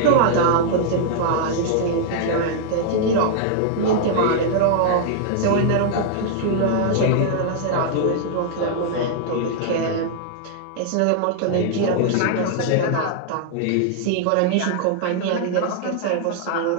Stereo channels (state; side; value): different; both; correlation -0.01